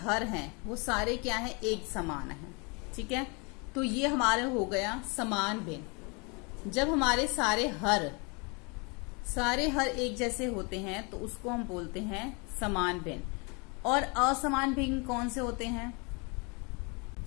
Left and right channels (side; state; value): right; quieter; 31.6 dB